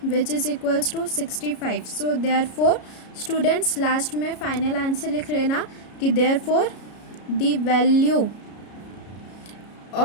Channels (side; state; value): right; late; 33 ms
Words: which is equals to 65। So therefore students last में फाइनल आंसर लिख लेना कि therefore the value